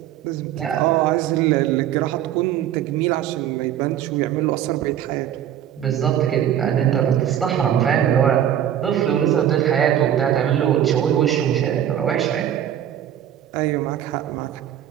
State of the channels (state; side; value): quieter; left; 10.6 dB